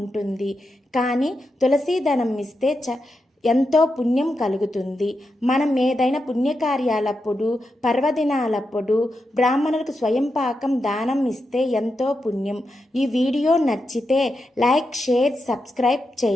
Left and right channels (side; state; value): both; normal; correlation 0.87